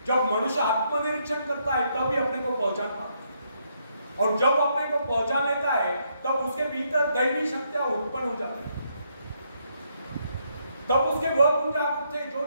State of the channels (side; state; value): both; inverted; correlation -0.75